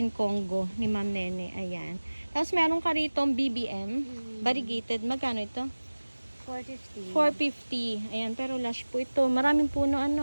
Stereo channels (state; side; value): inverted; both; correlation -1.00